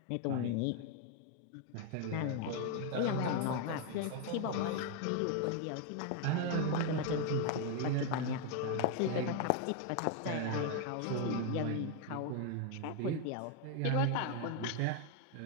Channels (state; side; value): different; both; correlation 0.01